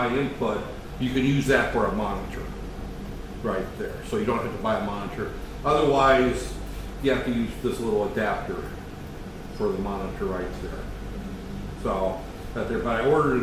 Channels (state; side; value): identical; both; correlation 1.00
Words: input, you can use that for a monitor right there. So you don't have to buy a monitor. Otherwise, you have to use this little adapter for the monitor right there. So that there, but I ordered